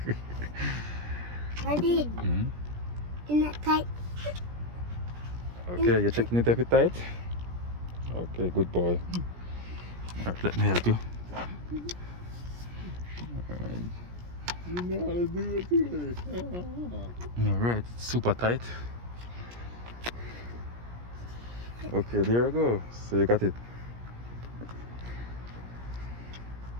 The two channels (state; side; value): late; left; 17 ms